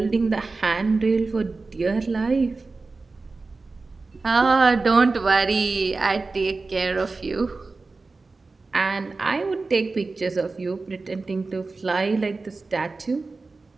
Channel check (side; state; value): left; quieter; 3.8 dB